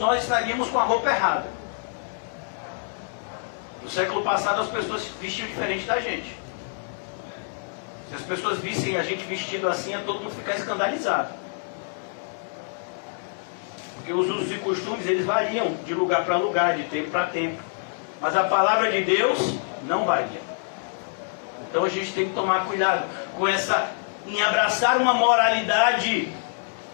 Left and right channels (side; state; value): right; silent; digital silence